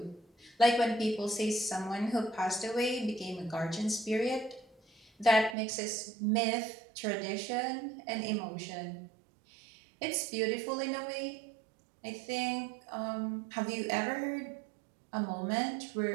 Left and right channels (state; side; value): drops out; left; at 5.6 s